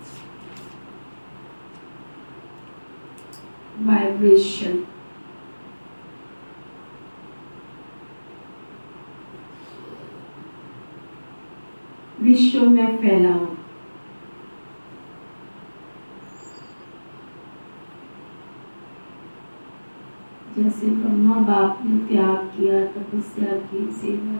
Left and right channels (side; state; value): both; inverted; correlation -1.00